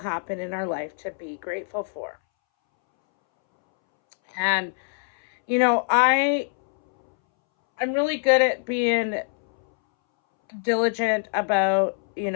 in our life to be grateful for. And I'm really good at being diligent about,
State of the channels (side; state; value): right; silent; 62 dB below the other